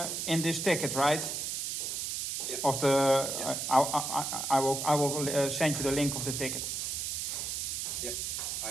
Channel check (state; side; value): noise; right; hiss, 2 dB below the sound